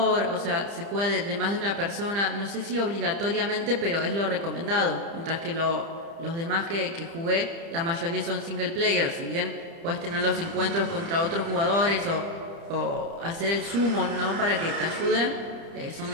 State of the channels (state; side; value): late; left; 30 ms